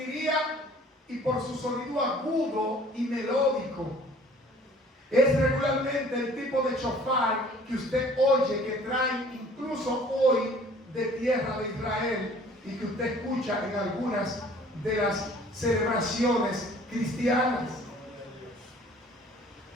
y por su sonido agudo y melódico. Es regularmente el tipo de shofar que usted oye, que traen incluso hoy de tierra de Israel y que usted escucha en algunas de las celebraciones cristianas.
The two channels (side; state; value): both; normal; correlation 0.52